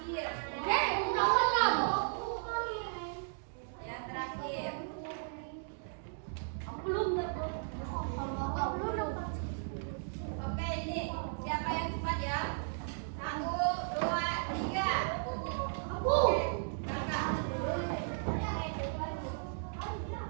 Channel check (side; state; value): left; silent; digital silence